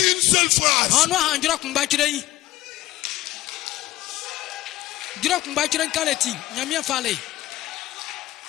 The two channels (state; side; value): quieter; right; 16.4 dB